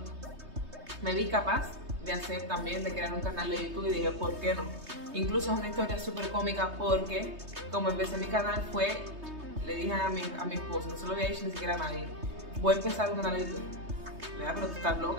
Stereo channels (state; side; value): late; left; 3.2 ms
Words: me vi capaz de hacer también, de crear un canal de YouTube y dije, ¿por qué no? Incluso es una historia súper cómica porque como empecé mi canal le dije a mi esposo, no se lo había dicho ni siquiera a nadie, voy a empezar un canal de YouTube. Pero tú estás